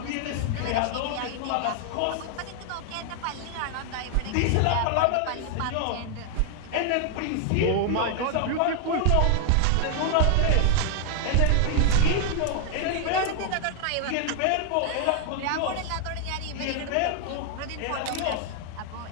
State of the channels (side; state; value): both; different; correlation 0.00